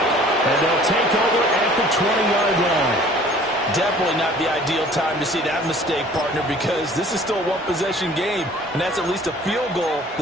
and they'll take over at the 20-yard line. Definitely not the ideal time to see that mistake, partner, because this is still a one-possession game, and that's at least a field goal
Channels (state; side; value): normal; both; correlation 0.51